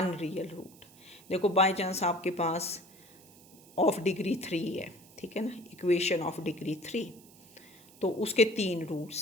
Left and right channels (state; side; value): noise; right; hiss, 24 dB below the sound